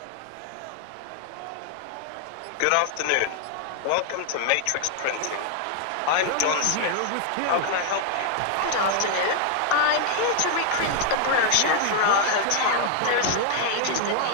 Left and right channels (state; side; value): different; both; correlation 0.00